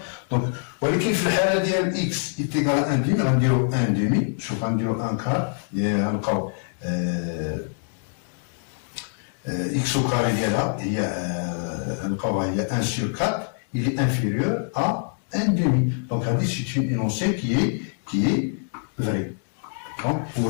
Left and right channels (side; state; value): right; silent; digital silence